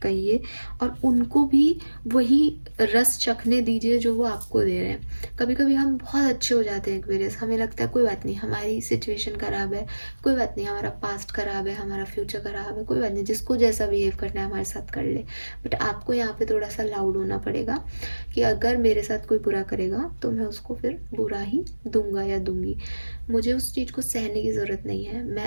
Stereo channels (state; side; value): inverted; both; correlation -1.00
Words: कहिए और उनको भी वही रस चखने दीजिए जो वो आपको दे रहे हैं। कभी कभी हम बहुत अच्छे हो जाते हैं एक्वेरियस, हमें लगता है कोई बात नहीं, हमारी सिचुएशन ख़राब है, कोई बात नहीं, हमारा पास्ट ख़राब है, हमारा फ्यूचर ख़राब है, कोई बात नहीं, जिसको जैसा बिहेव करना है हमारे साथ कर ले। बट आपको यहाँ पे थोड़ा सा लाउड होना पड़ेगा कि अगर मेरे साथ कोई बुरा करेगा तो मैं उसको फिर बुरा ही दूंगा या दूंगी। मुझे उस चीज़ को सहने की ज़रूरत नहीं है।